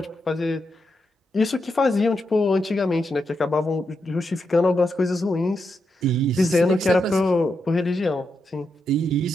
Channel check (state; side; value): normal; both; correlation 0.84